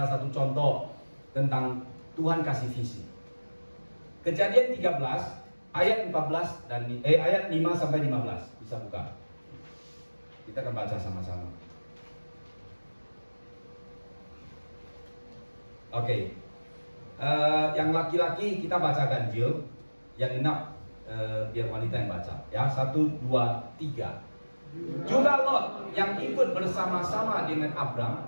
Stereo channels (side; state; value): both; inverted; correlation -1.00